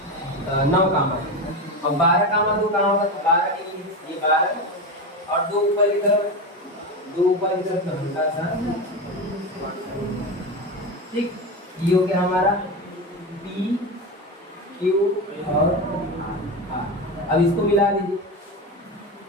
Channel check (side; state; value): both; normal; correlation 0.19